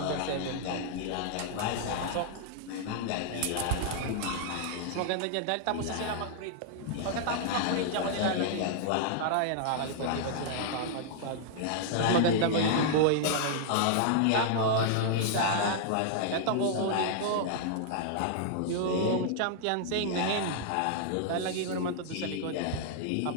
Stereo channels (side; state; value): both; different; correlation -0.01